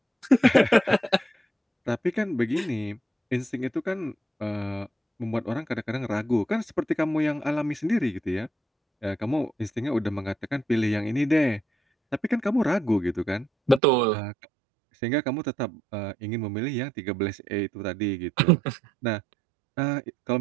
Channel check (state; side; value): drops out; left; at 13.8 s